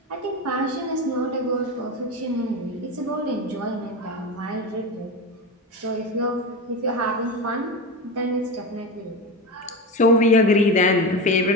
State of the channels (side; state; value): both; normal; correlation 0.22